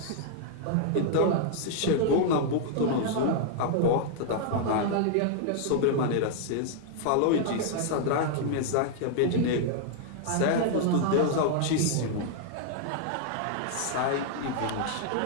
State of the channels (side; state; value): both; different; correlation -0.01